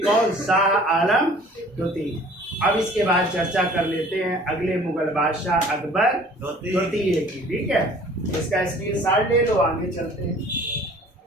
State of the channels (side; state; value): both; normal; correlation 0.50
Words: कौन? शाह आलम द्वितीय। अब इसके बाद चर्चा कर लेते हैं अगले मुगल बादशाह अकबर द्वितीय की। ठीक है, इसका स्क्रीनशॉट ले लो, आगे चलते हैं।